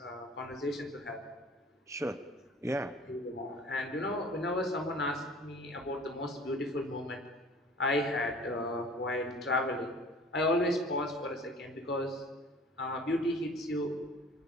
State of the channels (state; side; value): normal; both; correlation 0.47